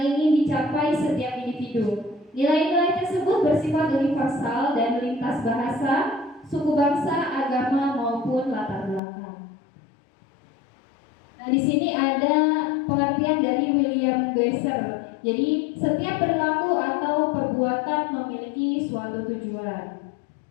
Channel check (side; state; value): right; drops out; at 9.0 s